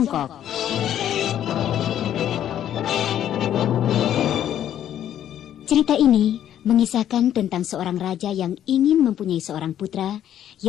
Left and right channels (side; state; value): right; quieter; 10.8 dB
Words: Cerita ini mengisahkan tentang seorang raja yang ingin mempunyai seorang putra